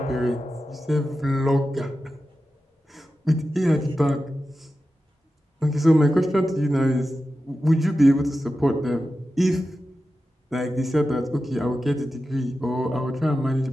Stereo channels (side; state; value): both; normal; correlation 0.92